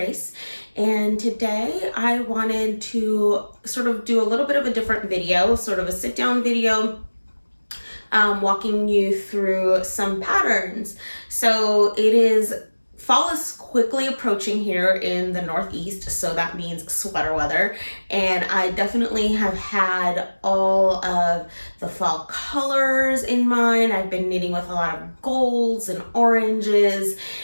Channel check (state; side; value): inverted; both; correlation -1.00